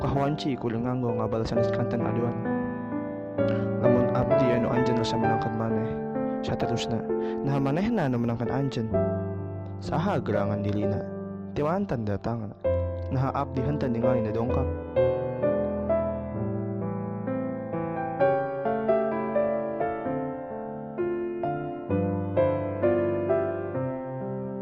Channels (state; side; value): identical; both; correlation 1.00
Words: kudu nganggo ngabal sanes kanten aduan. Lamun abdi anu anjeun rasa menangkan maneh, saterusna nah manehna anu menangkan anjeun. Saha gerangan dilina, ti mantan datangna. Nah abdi henteu ningali na dongkap.